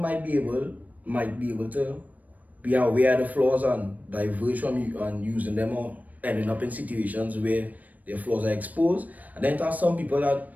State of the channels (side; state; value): left; late; 0.076 ms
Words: might be able to be aware of the flaws and diverge from you and using them or ending up in situations where their flaws are exposed. And then there are some people that